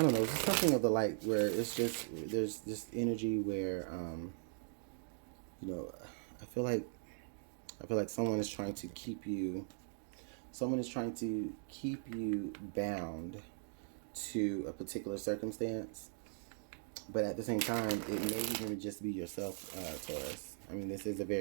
don't know, it's something of the like, where it's just, there's this energy where, you know, I feel like someone is trying to keep you bound to a particular circumstance, but at the same time, it may even just be yourself, Taurus. I mean, this is a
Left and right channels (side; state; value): left; silent; digital silence